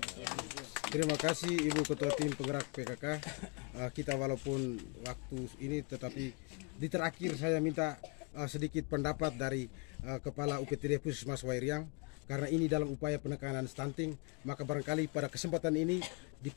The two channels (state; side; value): quieter; right; 33.1 dB